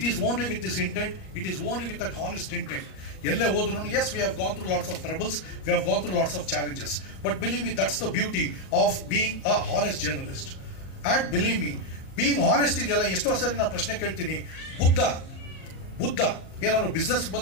is only with this intent, it is only with that honest intent. ಎಲ್ಲೇ ಹೋದ್ರು as we have gone through lots of troubles, we have gone through lots of challenges, but believe me that's the beauty of being a honest journalist. And believe me being honest ಇದೆಯಲ್ಲ, ಎಷ್ಟೋ ಸರಿ ನಾನು ಪ್ರಶ್ನೆ ಕೇಳ್ತೀನಿ, ಬುದ್ಧ ಏನಾದ್ರು business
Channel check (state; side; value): late; right; 38 ms